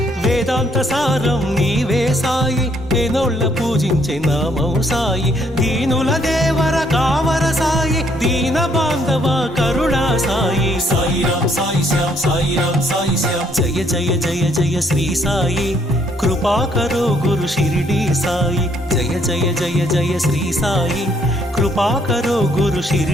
వేదాంత సారం నీవే సాయి వేనోళ్ళ పూజించే నామం సాయి। దీనుల దేవర కావర సాయి దీన బాంధవ కరుణా సాయి। సాయి రామ్ సాయి శ్యామ్ సాయి రామ్ సాయి శ్యామ్। జయ జయ జయ జయ శ్రీ సాయి कृपा करो गुरु शिरडी साई। जय जय जय जय श्री साई कृपा करो गुरु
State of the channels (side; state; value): both; normal; correlation 0.68